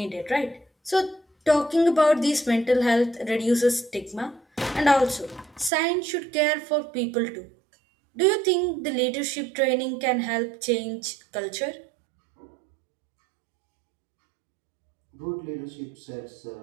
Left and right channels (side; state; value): left; drops out; at 5.7 s